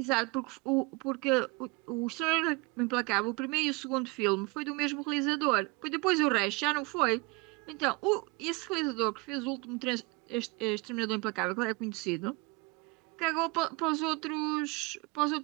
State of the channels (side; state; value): left; quieter; 25.4 dB